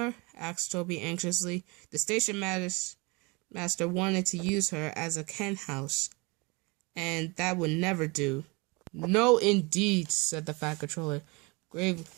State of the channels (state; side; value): quieter; left; 27.6 dB